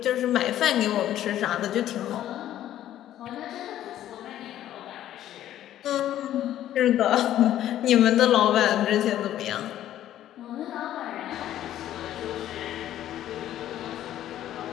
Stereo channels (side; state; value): right; quieter; 12.3 dB